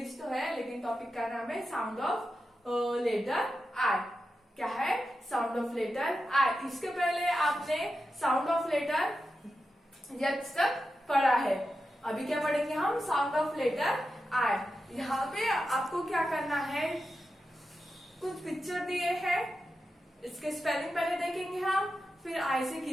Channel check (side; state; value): both; normal; correlation 0.90